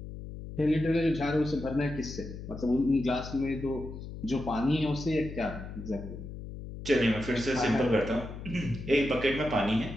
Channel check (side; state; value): left; noise; hum, 10 dB below the sound